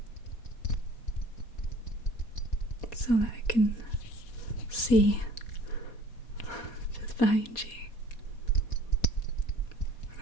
so that I can see just behind you,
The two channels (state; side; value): late; right; 4.2 ms